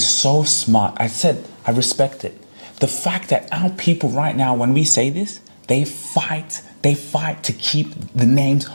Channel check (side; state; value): both; inverted; correlation -1.00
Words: so smart. I said, I respect it. The fact that our people right now, when we say this, they fight to keep the names